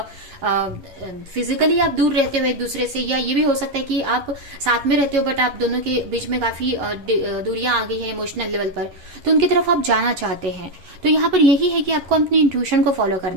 फिजिकली आप दूर रहते हो एक दूसरे से, या ये भी हो सकता है कि आप साथ में रहते हो बट आप दोनों के बीच में काफी दूरियां आ गई हैं इमोशनल लेवल पर, तो उनकी तरफ आप जाना चाहते हैं। तो यहाँ पर यही है कि आपको अपनी इंट्यूशन को फॉलो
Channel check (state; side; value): late; left; 11 ms